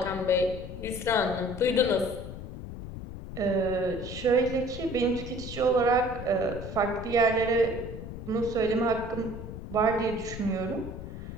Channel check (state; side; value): noise; left; rumble, 9 dB below the sound